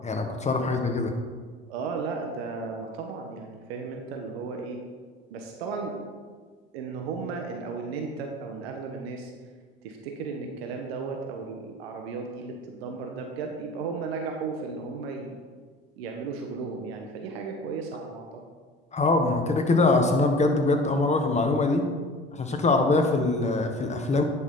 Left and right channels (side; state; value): both; normal; correlation 0.42